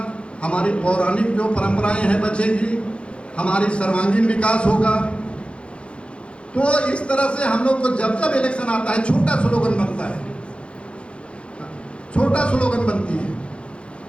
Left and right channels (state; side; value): late; right; 0.059 ms